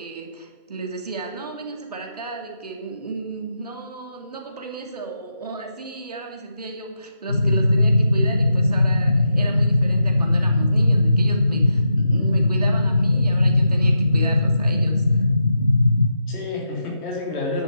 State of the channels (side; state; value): both; inverted; correlation -0.85